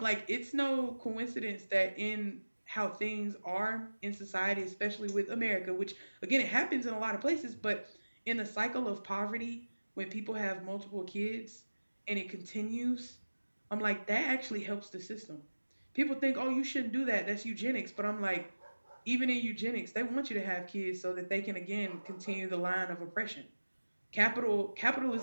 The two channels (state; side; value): inverted; both; correlation -1.00